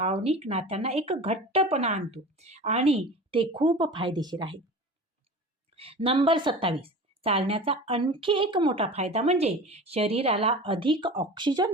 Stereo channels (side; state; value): both; normal; correlation 0.35